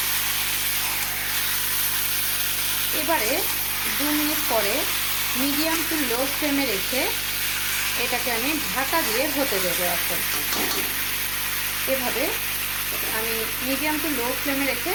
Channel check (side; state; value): right; noise; hum, 12 dB below the sound